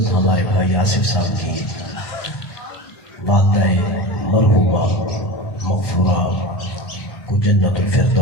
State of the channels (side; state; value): right; late; 1.8 ms